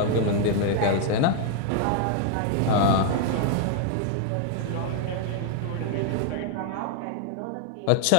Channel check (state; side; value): different; both; correlation 0.00